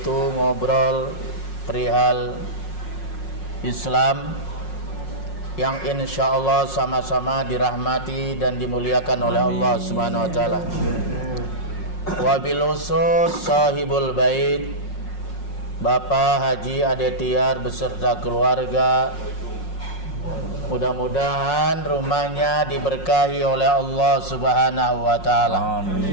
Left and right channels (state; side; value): late; right; 5.5 ms